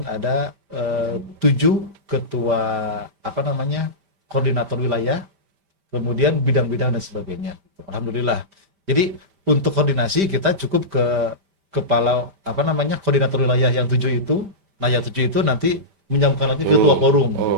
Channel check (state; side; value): late; left; 5.1 ms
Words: ada 7 ketua koordinator wilayah, kemudian bidang-bidang dan sebagainya. Alhamdulillah. Jadi untuk koordinasi kita cukup ke kepala koordinator wilayah yang 7 itu. Nah yang 7 itu nanti menyambungkan lagi ke ketua forum,